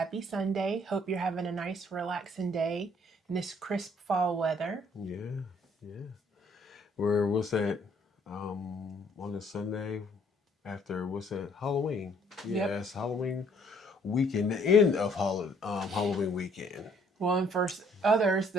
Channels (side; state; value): both; normal; correlation 0.63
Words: Sunday. Hope you're having a nice, relaxing day in this crisp fall weather. Yeah, yeah. What's that? On a Sunday after what's that? Halloween. Yep. Yeah, it's Halloween weekend, the end of Halloween weekend. Well, and for others,